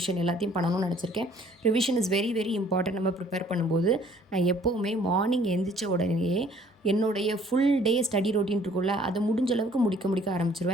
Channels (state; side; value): normal; both; correlation 0.58